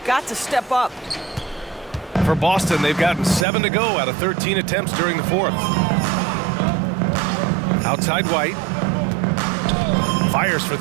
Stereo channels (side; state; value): left; drops out; at 3.5 s